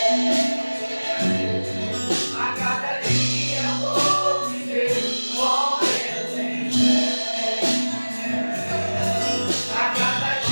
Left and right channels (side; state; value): both; inverted; correlation -1.00